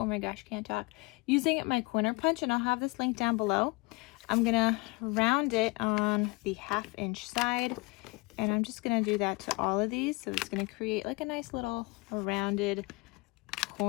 my gosh, can't talk. Using my corner punch, and I'll have this link down below. I'm gonna round it on the 1/2 inch side, and I'm just gonna do that to all of these, so it's gonna create like a nice little rounded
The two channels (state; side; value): quieter; right; 26.2 dB